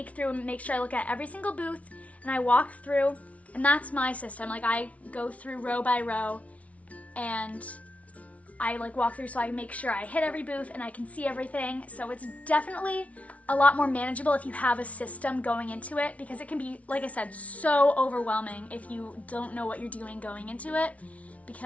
through and make sure I look at every single booth, and I walk through, and that's my system. Like I go through row by row and I like walk through so I make sure I hit every booth and I can see everything. So it's definitely a lot more manageable if you have a system going into it, because it can be, like I said, so overwhelming if you don't know what you're doing going into it,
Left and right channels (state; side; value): late; right; 0.066 ms